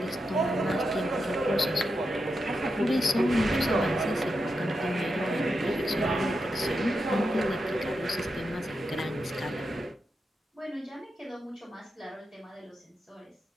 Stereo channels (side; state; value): both; normal; correlation 0.87